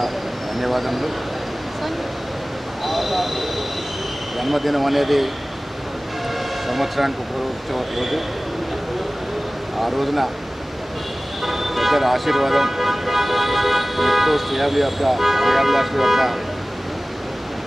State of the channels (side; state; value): both; normal; correlation 0.97